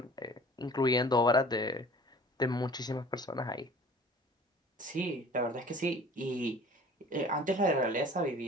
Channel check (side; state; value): both; normal; correlation 0.47